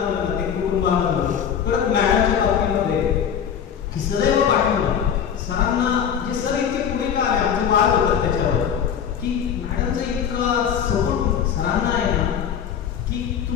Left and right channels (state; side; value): quieter; right; 8.2 dB